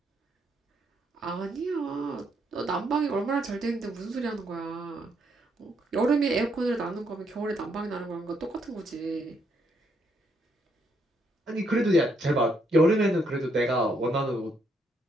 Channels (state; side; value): normal; both; correlation 0.74